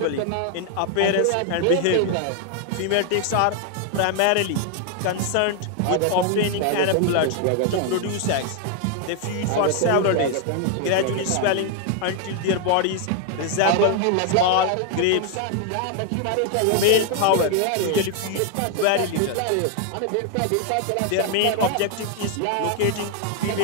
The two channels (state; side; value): different; both; correlation 0.00